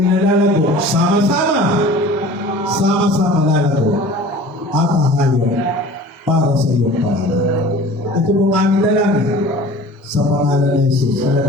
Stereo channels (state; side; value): normal; both; correlation 0.43